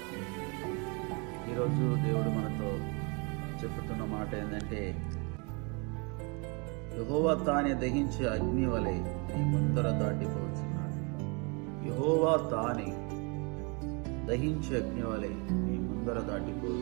ఈరోజు దేవుడు మనతో చెప్పుతున్న మాట ఏంటంటే, యెహోవా తానే దహించే అగ్ని వలె నీ ముందర దాటిపోతున్నాడు. యెహోవా తానే దహించే అగ్ని వలె నీ ముందర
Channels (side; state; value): left; quieter; 32.5 dB